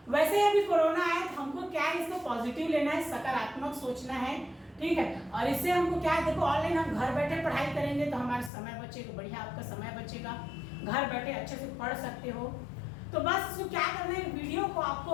वैसे अभी कोरोना आया तो हमको क्या है, इसको पॉजिटिव लेना है, सकारात्मक सोचना है, ठीक है। और इससे हमको क्या है, देखो ऑनलाइन हम घर बैठे पढ़ाई करेंगे तो हमारा समय बचेगा, बढ़िया आपका समय बचेगा, घर बैठे अच्छे से पढ़ सकते हो। तो बस इसको क्या करना है, वीडियो को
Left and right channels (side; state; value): right; drops out; at 8.5 s